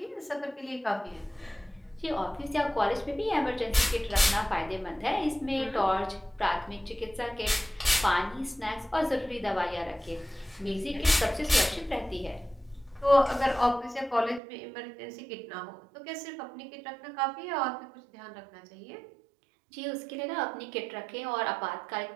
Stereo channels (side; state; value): left; drops out; at 14.4 s